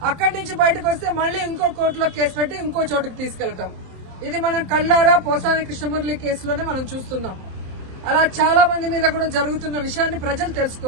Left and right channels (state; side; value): late; left; 27 ms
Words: అక్కడి నుంచి బయటకు వస్తే మళ్లీ ఇంకో కోర్టులో కేసు పెట్టి ఇంకో చోటుకు తీసుకెళ్తాం. ఇది మనం కళ్ళారా పోసాని కృష్ణమురళి కేసులోనే మనం చూస్తున్నాం. అలా చాలా మంది మీద కూడా జరుగుతున్న విషయాన్ని ప్రజలు